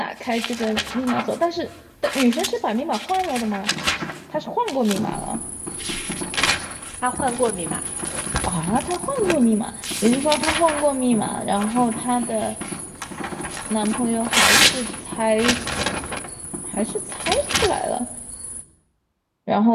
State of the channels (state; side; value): identical; both; correlation 1.00